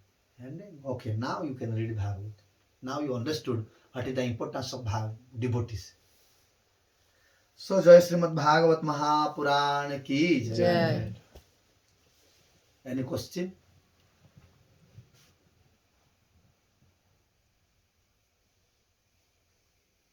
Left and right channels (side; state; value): both; identical; correlation 1.00